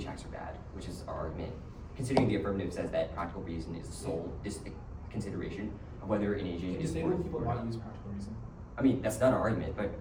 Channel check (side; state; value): both; identical; correlation 1.00